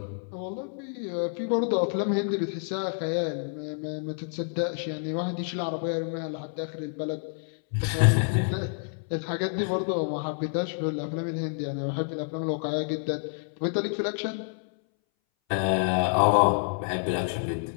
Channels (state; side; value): silent; right; 59 dB below the other